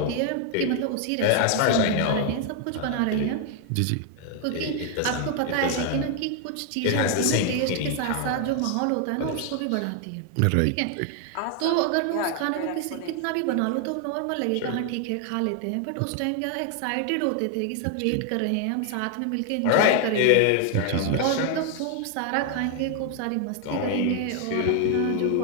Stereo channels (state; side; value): different; both; correlation 0.00